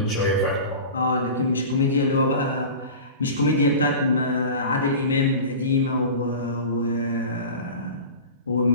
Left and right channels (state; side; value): inverted; both; correlation -0.34